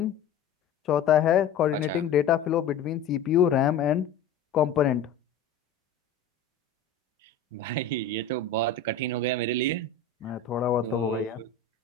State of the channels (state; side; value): quieter; right; 5.6 dB